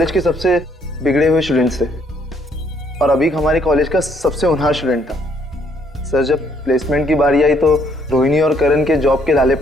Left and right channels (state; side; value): normal; both; correlation 0.68